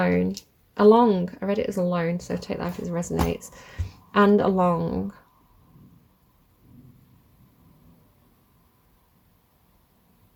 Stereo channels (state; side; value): identical; both; correlation 1.00